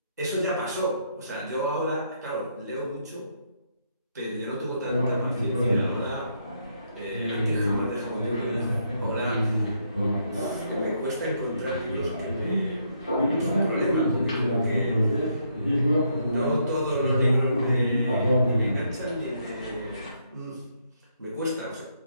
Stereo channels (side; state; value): both; inverted; correlation -0.75